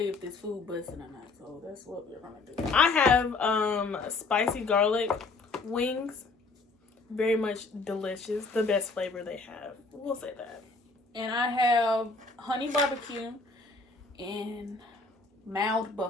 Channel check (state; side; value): quieter; right; 3.8 dB